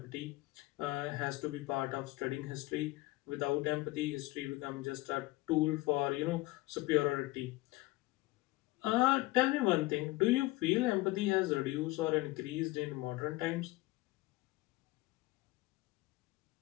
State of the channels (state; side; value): quieter; right; 19.8 dB